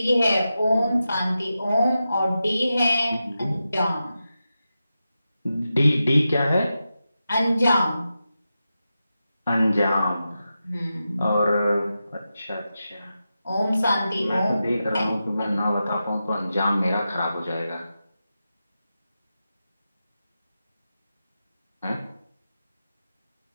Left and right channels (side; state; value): both; inverted; correlation -0.90